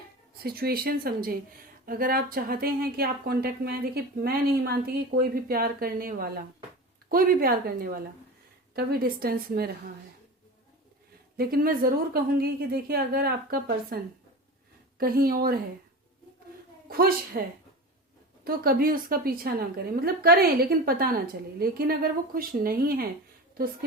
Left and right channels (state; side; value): normal; both; correlation 0.30